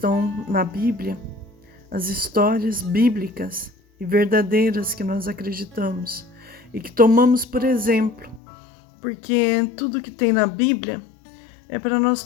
na Bíblia, as histórias bíblicas e verdadeiras que nós acreditamos e que tomamos por exemplo, porque tudo que tem na Bíblia é para nós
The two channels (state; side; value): drops out; right; at 8.4 s